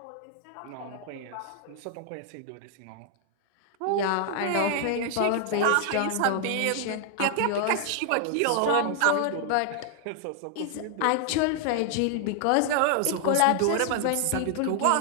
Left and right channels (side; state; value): both; different; correlation 0.00